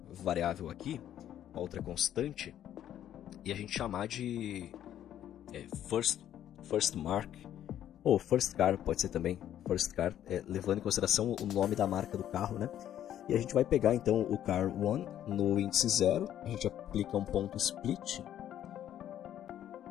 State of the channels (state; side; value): quieter; right; 11.1 dB